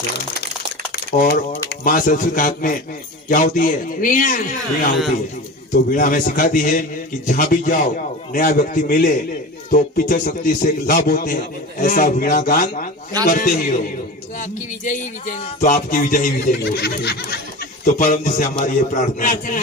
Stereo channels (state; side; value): normal; both; correlation 0.31